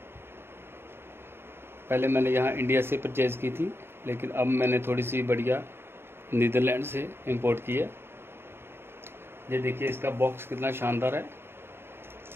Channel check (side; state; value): left; late; 0.11 ms